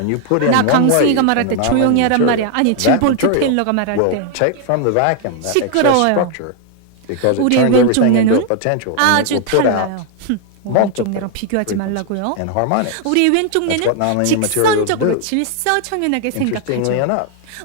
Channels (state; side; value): different; both; correlation 0.00